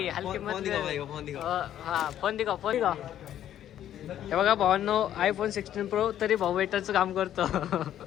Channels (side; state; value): right; quieter; 11.2 dB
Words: हलके फोन मत. दिखाओ भाई फोन दिखाओ हा फोन दिखाओ. हे बघा भावांनो iPhone 16 Pro तरी भाऊ वेटरचं काम करतो.